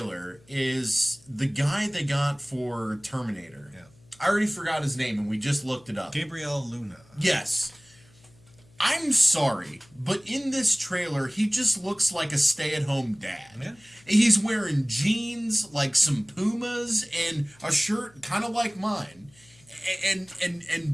is the guy they got for Terminator. Yeah. I already forgot his name and we just looked it up. Gabriel Luna. Yes. I'm sorry, but in this trailer, he just looks like a stay-at-home dad. Yeah. He's wearing jeans, like some Pumas, and a shirt kind of like mine. And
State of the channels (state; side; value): noise; left; hum, 28 dB below the sound